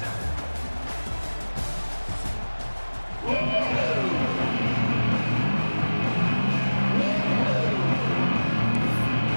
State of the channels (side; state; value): both; inverted; correlation -1.00